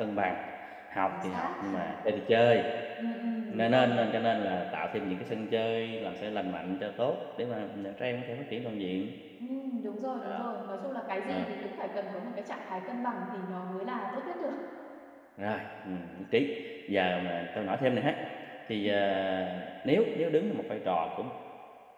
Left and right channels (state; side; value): identical; both; correlation 1.00